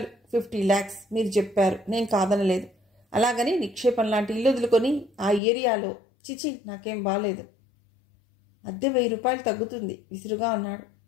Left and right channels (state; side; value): drops out; right; at 5.4 s